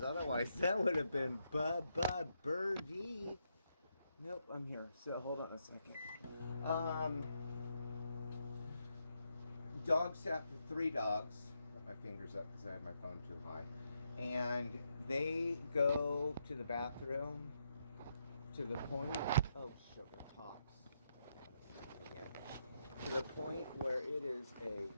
Otherwise, that would have been birdie. Nope, I'm here. So hold on a second. Dogs sat for 3 dogs. Put my fingers up because I have my phone too high. And they go to the bathroom to the point. Oh, sugar pops. Again. To the point where it is a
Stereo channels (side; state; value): both; inverted; correlation -0.80